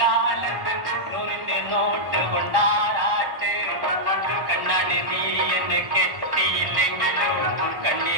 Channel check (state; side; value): late; left; 1.1 ms